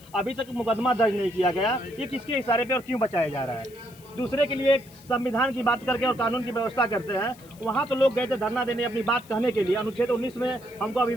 अभी तक मुकदमा दर्ज नहीं किया गया। ये किसके इशारे पे और क्यों बचाया जा रहा है? दूसरे के लिए संविधान की बात करके और कानून की व्यवस्था करते हैं। वहाँ तो लोग गए थे धरना देने अपनी बात कहने के लिए। अनुच्छेद 19 में हमको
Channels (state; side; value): noise; left; hiss, 24 dB below the sound